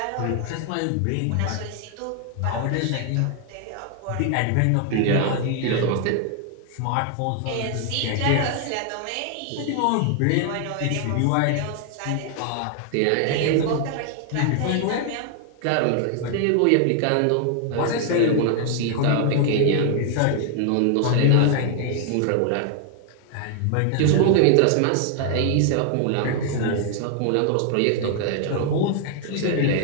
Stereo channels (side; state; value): both; different; correlation 0.00